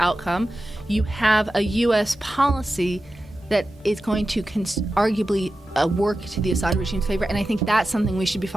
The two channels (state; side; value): normal; both; correlation 0.93